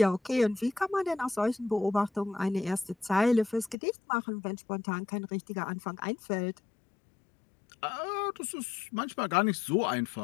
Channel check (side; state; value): right; drops out; at 3.8 s